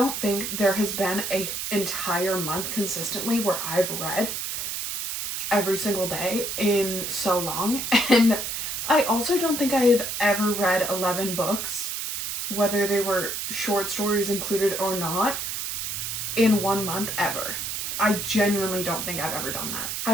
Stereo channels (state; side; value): noise; right; hiss, 3 dB below the sound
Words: think there has been an entire month consistently where I've read every single day in so long. And I also don't think I have ever read 11 books, whether they were short stories included or not, in 1 month ever. I genuinely don't think I've ever done that. I